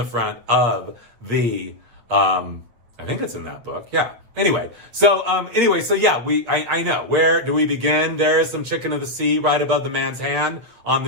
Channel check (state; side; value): late; left; 8.6 ms